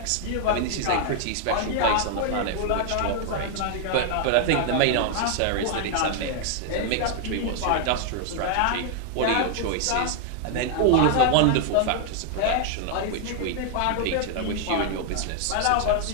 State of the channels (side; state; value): both; different; correlation 0.00